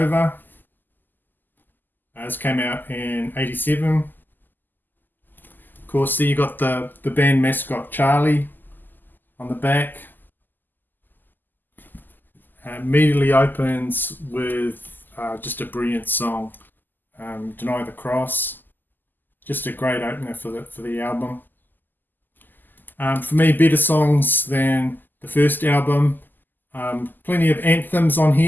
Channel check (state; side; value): late; right; 0.088 ms